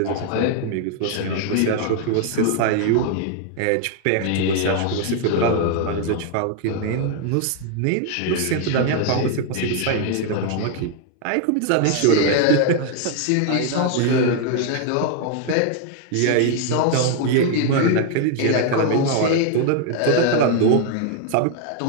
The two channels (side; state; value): both; different; correlation 0.00